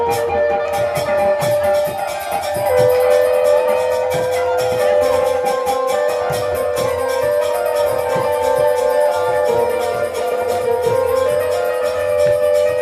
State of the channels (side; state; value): both; identical; correlation 1.00